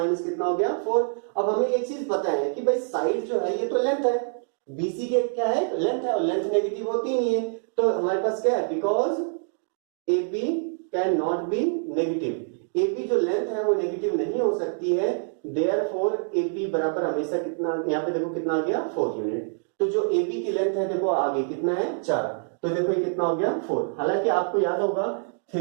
कितना हो गया, 4। अब हमें एक चीज पता है कि भाई साइड जो है ये तो लेंथ है, BC के क्या है, लेंथ है, और लेंथ नेगेटिव होती नहीं है। तो हमारे पास क्या है, because AB can not be negative, AB जो लेंथ है वो नेगेटिव नहीं हो सकती है, देयरफॉर AB बराबर हमेशा कितना, यहाँ पे देखो कितना आ गया, 4 यूनिट। तो जो AB की लेंथ है देखो आगे कितना है, 4, तो देखो ये कितना हो गया, 4। हालांकि आपको याद होगा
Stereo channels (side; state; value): left; silent; digital silence